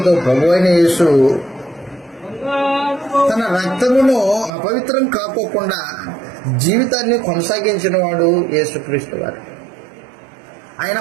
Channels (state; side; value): drops out; left; at 4.5 s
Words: ప్రభు అయిన యేసు తన రక్తమును అపవిత్రం కాకోకుండా జీవితాన్ని కొనసాగించిన వాడు యేసుక్రీస్తు వారు. ఆయన